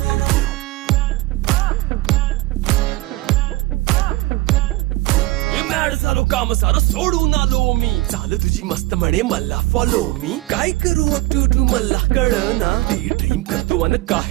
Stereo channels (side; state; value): left; quieter; 18.8 dB